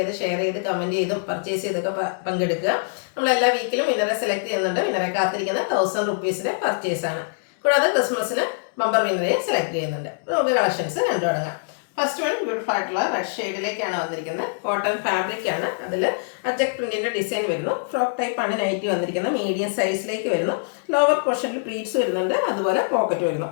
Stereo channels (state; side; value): silent; right; digital silence